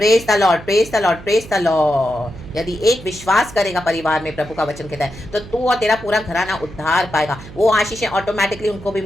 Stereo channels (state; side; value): noise; right; hum, 16 dB below the sound